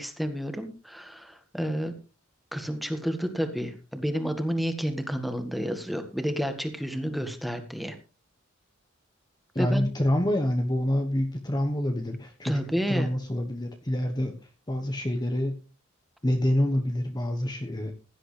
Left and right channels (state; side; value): normal; both; correlation 0.94